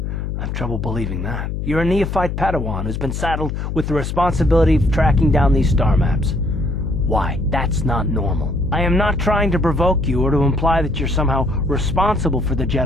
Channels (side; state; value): left; noise; hum, 4 dB below the sound